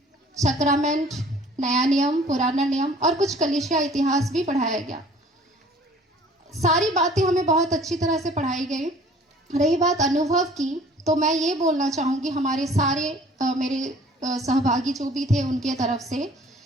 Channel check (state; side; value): normal; both; correlation 0.51